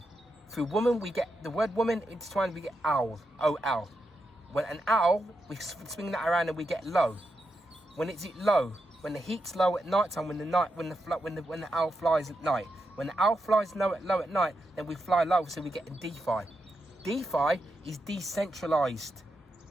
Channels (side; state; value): both; normal; correlation 0.85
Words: Through woman we get the word woman intertwined. We get owl. O-L. When an owl, we swing that around and we get low. When it's low, when the heat's low at night time, when the owl flies at night. When the owl flies low at night, then we fly low, so we get DeFi. DeFi is decentralized